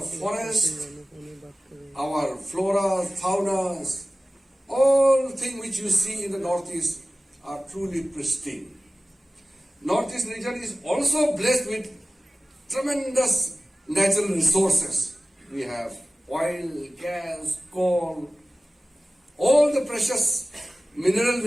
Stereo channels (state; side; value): normal; both; correlation 0.96